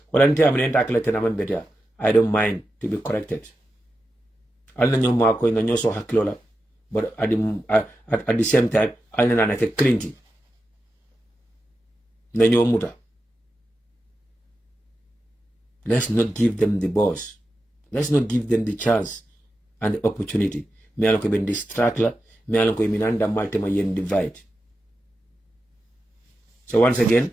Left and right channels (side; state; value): both; normal; correlation 0.90